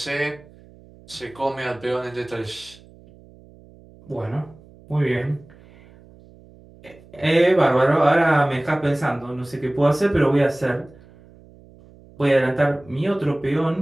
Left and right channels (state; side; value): noise; right; hum, 24 dB below the sound